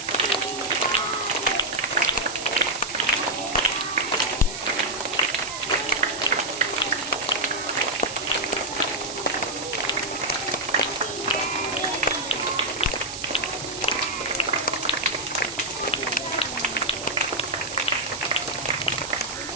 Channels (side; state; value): right; noise; hiss, 8 dB below the sound